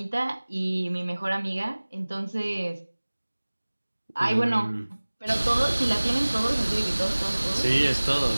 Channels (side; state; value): both; inverted; correlation -1.00